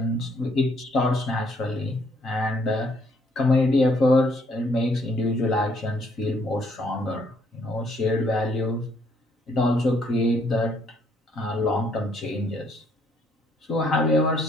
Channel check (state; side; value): normal; both; correlation 0.67